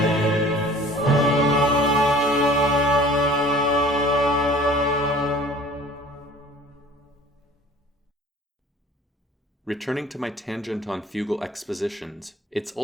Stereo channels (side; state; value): both; normal; correlation 0.47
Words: Returning to my tangent on fugal expositions, it's